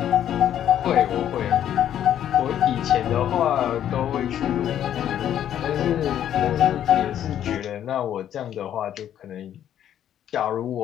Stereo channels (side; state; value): right; quieter; 10.5 dB